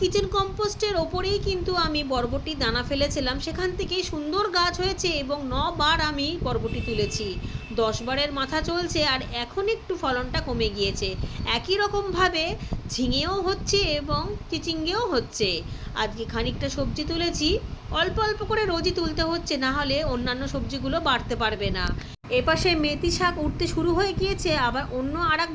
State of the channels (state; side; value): identical; both; correlation 1.00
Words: কম্পোস্টের ওপরেই কিন্তু আমি বরবটির দানা ফেলেছিলাম, সেখান থেকেই সুন্দর গাছ হয়েছে এবং 9 বার আমি বরবটি তুলেছি। 10 বারের মাথা চলছে আর এখন একটু ফলনটা কমে গিয়েছে। একই রকমভাবে ঝিঙেও হচ্ছে এবং চিচিঙ্গেও হচ্ছে। আজকে খানিকটা সবজি তুলেছি, অল্প অল্প করে রোজই তুলতে হচ্ছে, না হলে অন্যান্য সবজিগুলো বাড়তে পারবে না। এপাশে মেথি শাক উঠতে শুরু হয়ে গিয়েছে, আবার অন্য আর এক